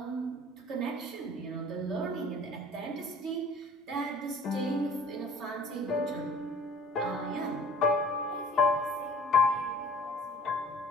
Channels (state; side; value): normal; both; correlation 0.50